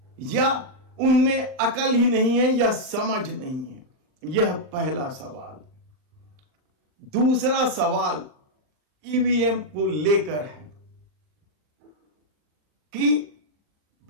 या उनमें अकल ही नहीं है या समझ नहीं है? यह पहला सवाल। दूसरा सवाल ईवीएम को लेकर है कि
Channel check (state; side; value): late; left; 40 ms